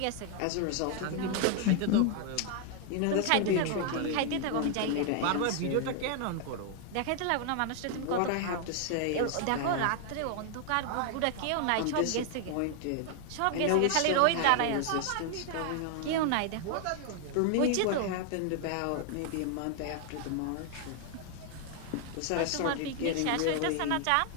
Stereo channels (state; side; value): different; both; correlation 0.00